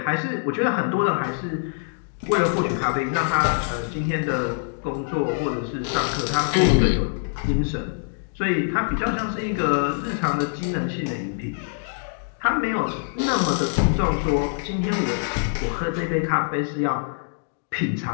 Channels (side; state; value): right; silent; digital silence